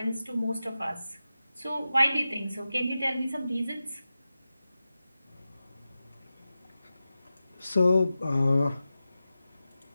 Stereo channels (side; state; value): both; inverted; correlation -0.93